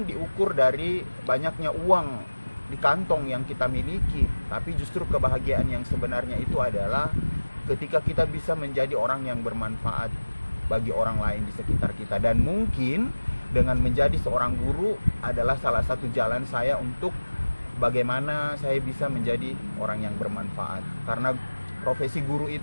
diukur dari banyaknya uang di kantong yang kita miliki, tapi justru kebahagiaan yang sebenarnya itu adalah ketika kita bisa menjadi orang yang bermanfaat bagi orang lain di sekitar kita. Dan mungkin dengan menjadi seorang guru adalah salah satu jalan saya untuk bagaimana saya bisa menjadi orang yang bermanfaat. Karena profesi guru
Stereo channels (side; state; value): both; inverted; correlation -1.00